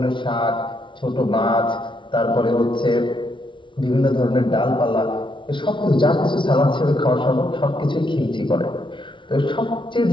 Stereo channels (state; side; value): late; right; 0.24 ms